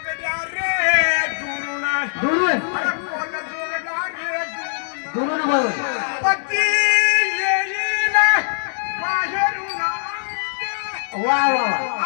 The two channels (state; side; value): silent; right; 63 dB below the other